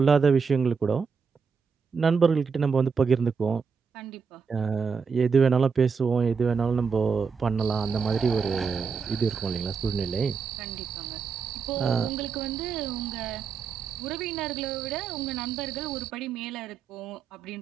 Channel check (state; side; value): quieter; left; 5.6 dB